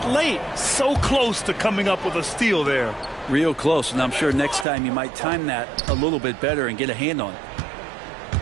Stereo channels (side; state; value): left; drops out; at 4.7 s